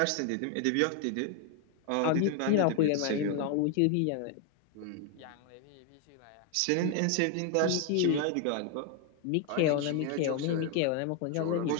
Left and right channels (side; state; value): both; different; correlation 0.01